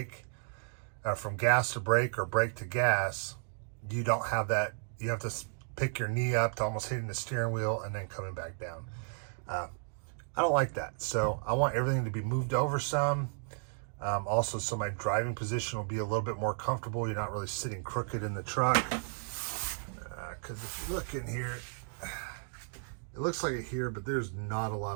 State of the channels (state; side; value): silent; left; 55 dB below the other